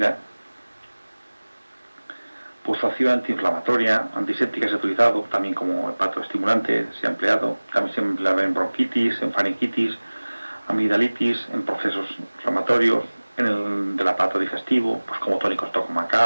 Pues su acción antiinflamatoria, antiséptica se ha utilizado, también como hepatoestimulante se ha empleado, también se emplea en bronquitis, en faringitis, amigdalitis, en procesos inflamatorios, en el del aparato digestivo, pues como tónico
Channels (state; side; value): inverted; both; correlation -1.00